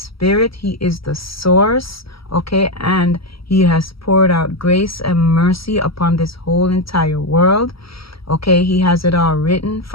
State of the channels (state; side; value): late; right; 0.75 ms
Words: He is the source. Okay, and he has poured out grace and mercy upon this whole entire world. Okay, he has it all written